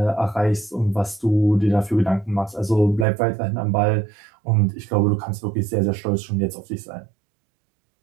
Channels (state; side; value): drops out; left; at 3.1 s